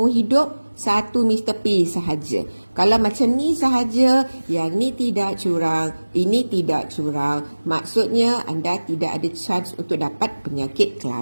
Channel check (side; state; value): both; inverted; correlation -1.00